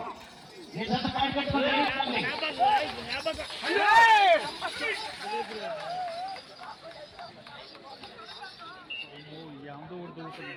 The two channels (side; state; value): both; identical; correlation 1.00